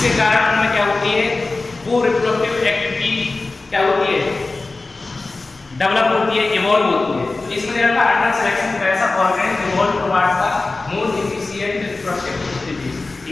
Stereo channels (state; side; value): quieter; right; 3.5 dB